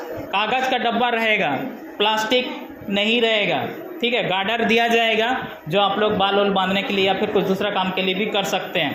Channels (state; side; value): identical; both; correlation 1.00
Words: कागज़ का डब्बा रहेगा, प्लास्टिक नहीं रहेगा, ठीक है। गार्डर दिया जाएगा जो आप लोग बाल वाल बांधने के लिए या फिर कुछ दूसरा काम के लिए भी कर सकते